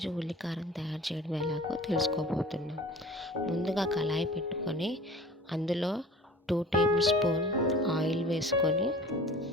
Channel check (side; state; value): both; normal; correlation 0.43